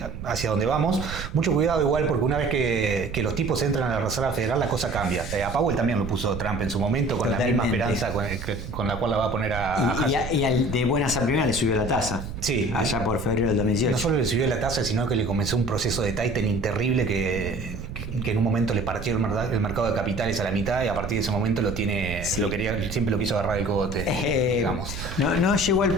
donde vamos. Mucho cuidado igual porque una vez que los tipos entran a la Reserva Federal la cosa cambia. A Powell también lo puso Trump en su momento con Totalmente. La misma esperanza con la cual la va a poner a Hassett. Y de buenas a primeras le subió la tasa. Sí. Allá por febrero del 2018. No solo le subió la tasa, sino que le comenzó un proceso de tightening terrible que en un momento le partió el mercado de capitales a la mitad y a partir de ese momento siempre lo quiso agarrar el cogote, digamos. No llegó al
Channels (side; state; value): right; noise; rumble, 8 dB below the sound